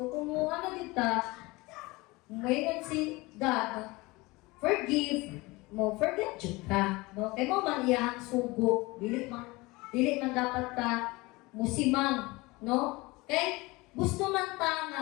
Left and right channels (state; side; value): quieter; right; 22.8 dB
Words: kung ano kita, ngayon si God, forgive mo, forget jud ka. No? Kay mo man iyahang sugo, dili man dapat ka musimang, no? Kay gusto man ta nga